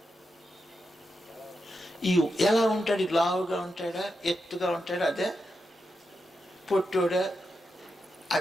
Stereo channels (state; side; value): normal; both; correlation 0.87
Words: ఈ ఎలా ఉంటాడు? లావుగా ఉంటాడా, ఎత్తుగా ఉంటాడా, అదే పొట్టోడా,